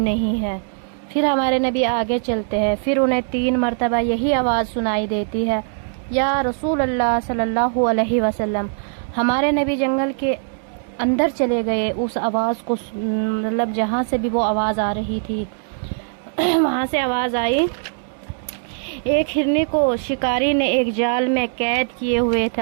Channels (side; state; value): left; silent; digital silence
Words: ہے۔ پھر ہمارے نبی آگے چلتے ہیں، پھر انہیں 3 مرتبہ یہی آواز سنائی دیتی ہے، یا رسول اللہ صلی اللہ علیہ وسلم۔ ہمارے نبی جنگل کے اندر چلے گئے، اس آواز کو مطلب جہاں سے بھی وہ آواز آ رہی تھی وہاں سے آواز آئی۔ ایک ہرنی کو شکاری نے ایک جال میں قید کیے ہوئے